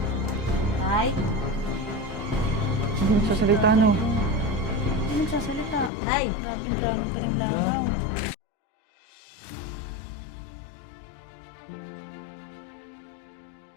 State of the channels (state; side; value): drops out; right; at 5.9 s